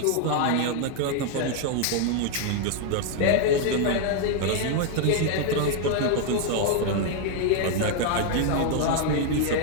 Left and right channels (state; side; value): different; both; correlation 0.00